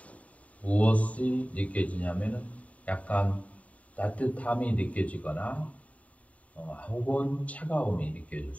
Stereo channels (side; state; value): right; late; 0.068 ms